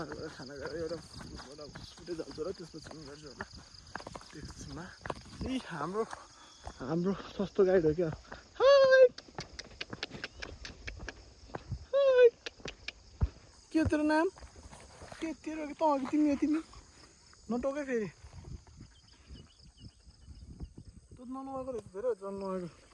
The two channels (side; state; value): both; identical; correlation 1.00